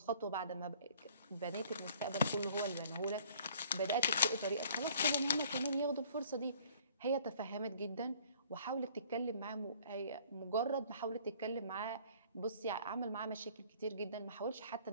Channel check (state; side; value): inverted; both; correlation -0.55